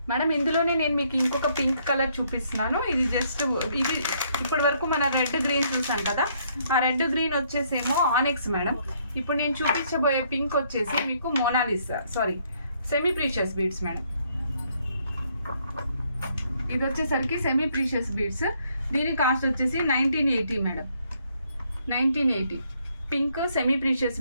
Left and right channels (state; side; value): inverted; both; correlation -0.69